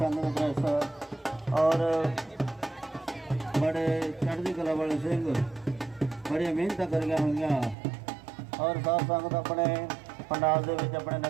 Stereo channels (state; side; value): drops out; left; at 7.8 s